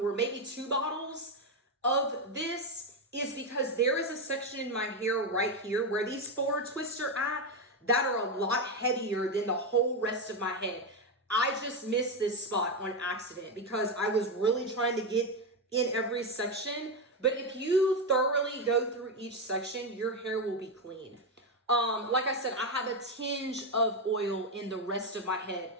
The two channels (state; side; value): normal; both; correlation 0.09